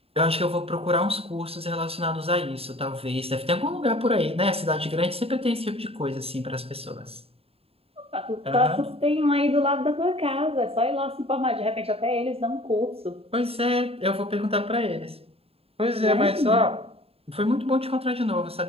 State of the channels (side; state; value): left; late; 0.28 ms